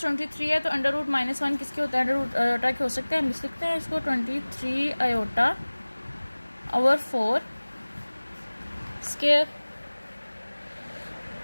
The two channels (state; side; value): inverted; both; correlation -1.00